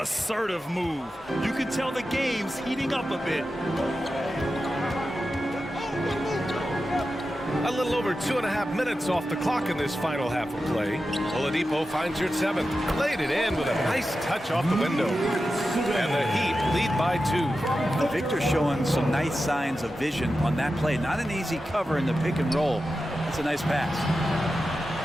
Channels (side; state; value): both; normal; correlation 0.92